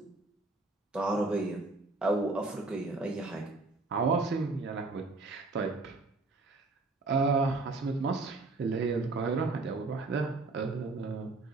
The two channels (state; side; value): quieter; left; 3.4 dB